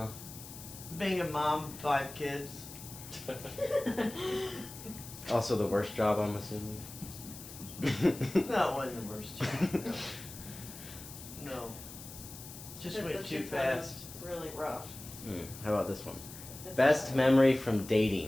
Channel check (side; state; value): left; noise; hiss, 14 dB below the sound